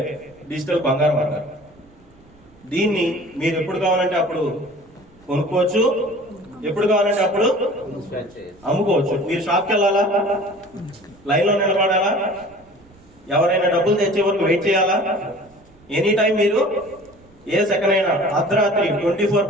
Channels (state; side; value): noise; right; rumble, 28 dB below the sound